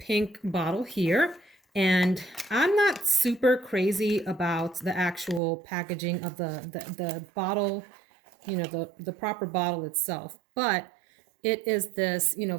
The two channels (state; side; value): drops out; left; at 5.4 s